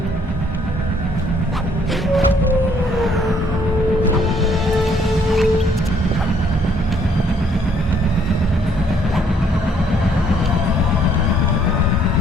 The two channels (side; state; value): both; normal; correlation 0.66